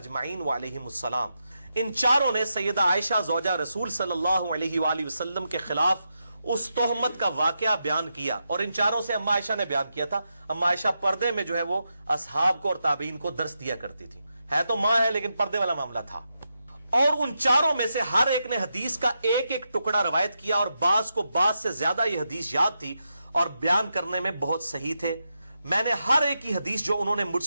وعلیہم السلام۔ ان چاروں نے سیدہ عائشہ زوجہ رسول صلی اللہ علیہ وآلہ وسلم کے خلاف اس تہمت کا واقعہ بیان کیا، اور ان چاروں سے اما عائشہ نے بیان کیا تھا۔ اما عائشہ پردے میں جو ہے وہ اصحاب کو اور تابعین کو درس دیا کرتی تھی، ہے تو ماں ہے لیکن پردے والا معاملہ تھا۔ اور ان چاروں میں سے ہر ایک نے حدیث کا ایک ایک ٹکڑا روایت کیا، اور بعض کو بعض سے زیادہ یہ حدیث یاد تھی اور بیان کرنے میں بہت صحیح تھے۔ میں نے ہر ایک کی حدیث جو انہوں نے مجھ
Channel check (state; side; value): inverted; both; correlation -0.86